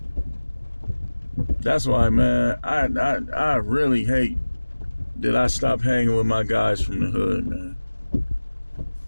That's why, man, I really hate that I stopped hanging with my guys from the hood, man.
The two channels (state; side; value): inverted; both; correlation -1.00